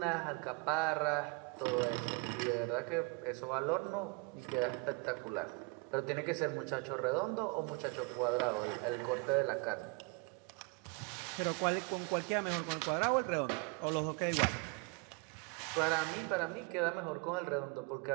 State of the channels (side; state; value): left; quieter; 30.5 dB